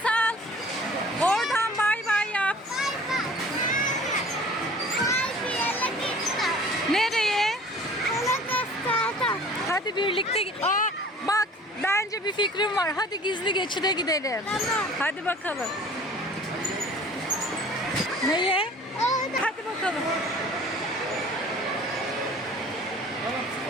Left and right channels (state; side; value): normal; both; correlation 0.47